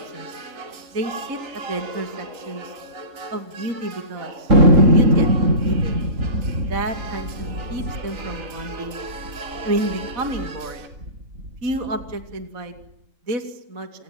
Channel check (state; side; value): late; left; 3.9 ms